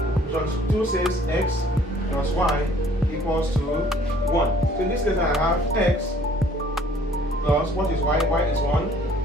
Equation 2 says x plus y equals to 1. So in this case I have x plus, what is y? Y is 1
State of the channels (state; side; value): normal; both; correlation 0.57